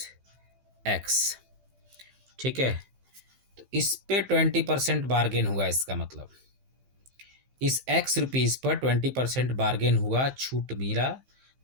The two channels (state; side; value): late; left; 15 ms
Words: x, ठीक है। तो इस पे 20% बार्गेन हुआ, इसका मतलब इस एक्स रुपीज़ पर 20% बार्गेन हुआ, छूट मिला,